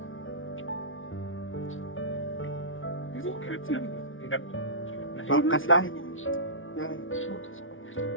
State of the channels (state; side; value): late; right; 0.57 ms